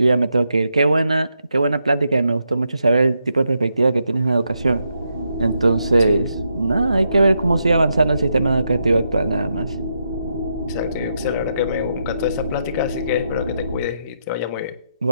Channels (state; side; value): inverted; both; correlation -0.82